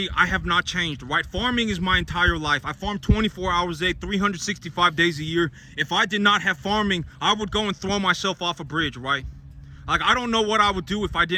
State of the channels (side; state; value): both; identical; correlation 1.00